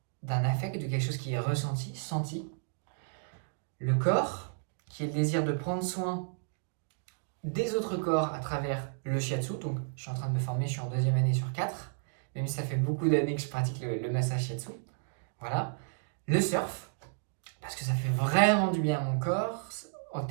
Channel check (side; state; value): left; silent; digital silence